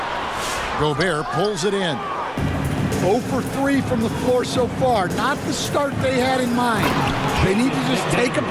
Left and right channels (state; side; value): identical; both; correlation 1.00